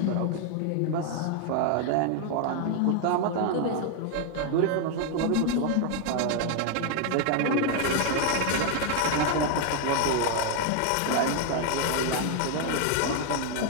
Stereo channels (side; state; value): both; different; correlation 0.00